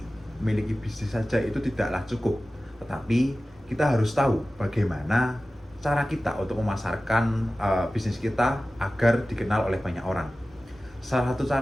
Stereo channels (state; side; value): normal; both; correlation 0.96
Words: memiliki bisnis saja itu tidaklah cukup, tetapi kita harus tahu bagaimana cara kita untuk memasarkan bisnis kita agar dikenal oleh banyak orang. Salah satu